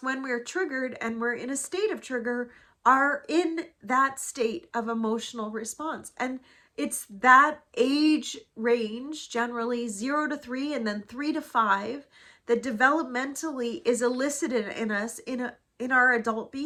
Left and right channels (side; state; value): both; identical; correlation 1.00